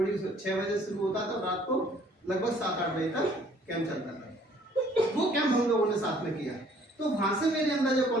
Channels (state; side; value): normal; both; correlation 0.59